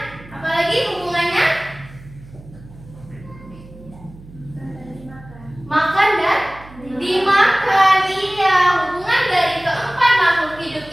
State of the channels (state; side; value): noise; right; hum, 20 dB below the sound